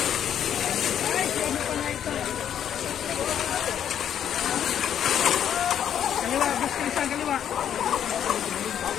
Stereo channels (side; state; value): right; quieter; 9.5 dB